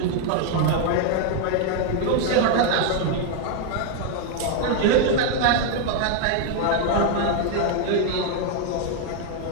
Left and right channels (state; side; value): different; both; correlation 0.00